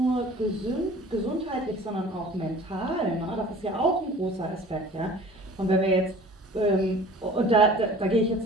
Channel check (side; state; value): both; normal; correlation 0.46